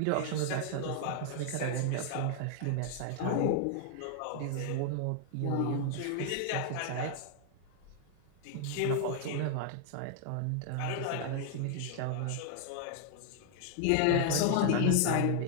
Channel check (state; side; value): different; both; correlation -0.01